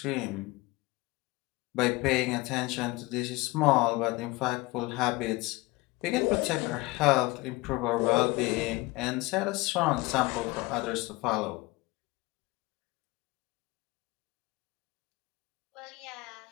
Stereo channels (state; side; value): quieter; right; 21.8 dB